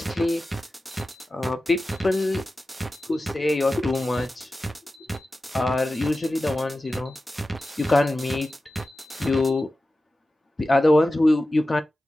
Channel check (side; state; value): both; normal; correlation 0.94